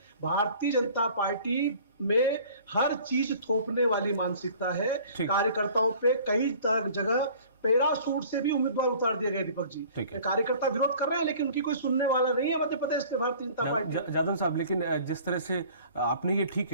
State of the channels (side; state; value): both; inverted; correlation -0.49